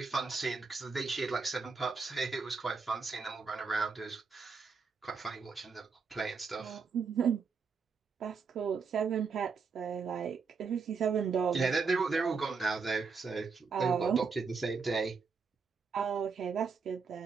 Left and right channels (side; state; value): left; quieter; 5.1 dB